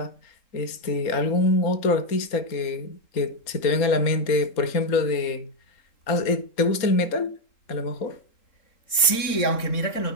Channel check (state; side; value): late; right; 3.7 ms